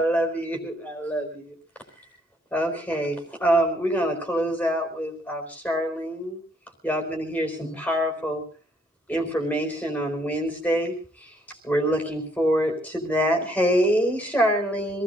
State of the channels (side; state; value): both; normal; correlation 0.68